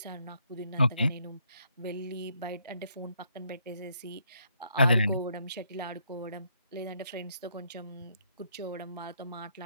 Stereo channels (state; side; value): inverted; both; correlation -0.73